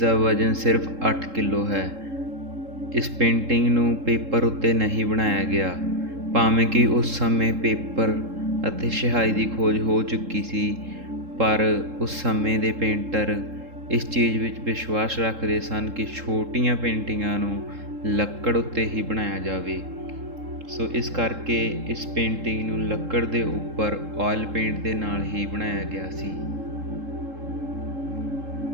ਵਜ਼ਨ ਸਿਰਫ 8 ਕਿਲੋ ਹੈ। ਇਸ ਪੇਂਟਿੰਗ ਨੂੰ ਪੇਪਰ ਉੱਤੇ ਨਹੀਂ ਬਣਾਇਆ ਗਿਆ, ਭਾਵੇਂ ਕਿ ਉਸ ਸਮੇਂ ਪੇਪਰ ਅਤੇ ਸਿਹਾਈ ਦੀ ਖੋਜ ਹੋ ਚੁੱਕੀ ਸੀ, ਪਰ ਉਸ ਸਮੇਂ ਦੇ ਪੇਂਟਰ ਇਸ ਚੀਜ਼ ਵਿੱਚ ਵਿਸ਼ਵਾਸ ਰੱਖਦੇ ਸਨ ਕਿ ਛੋਟੀਆਂ ਪੇਂਟਿੰਗਾਂ ਨੂੰ ਲੱਕੜ ਉੱਤੇ ਹੀ ਬਣਾਇਆ ਜਾਵੇ। ਸੋ ਇਸ ਕਰਕੇ ਇਸ ਪੇਂਟਿੰਗ ਨੂੰ ਲੱਕੜ ਦੇ ਉੱਪਰ ਆਇਲ ਪੇਂਟ ਦੇ ਨਾਲ ਹੀ ਬਣਾਇਆ ਗਿਆ ਸੀ।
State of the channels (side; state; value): left; late; 3.7 ms